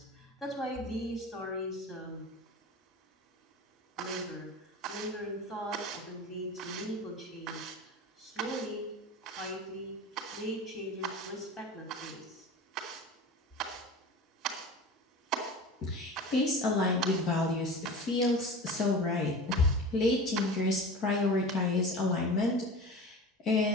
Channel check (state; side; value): normal; both; correlation 0.33